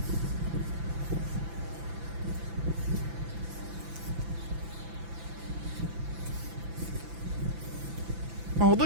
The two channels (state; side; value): late; left; 5.9 ms